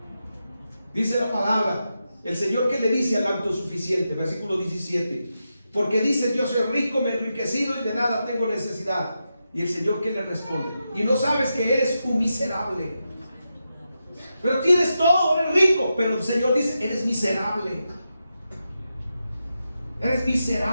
Dice la palabra, el Señor que le dice al autosuficiente, versículo 17, porque dice: yo soy rico, me he enriquecido y de nada tengo necesidad. Y el Señor que le responde: y no sabes que eres un miserable. Pero tienes todo, eres rico. Pero el Señor dice: eres miserable. Eres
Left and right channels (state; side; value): inverted; both; correlation -0.88